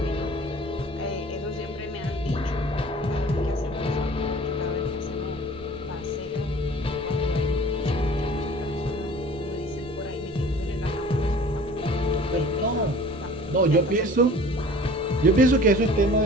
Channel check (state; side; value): noise; right; rumble, 20 dB below the sound